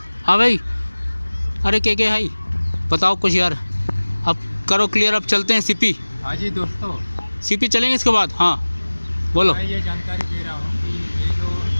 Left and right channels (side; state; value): both; inverted; correlation -1.00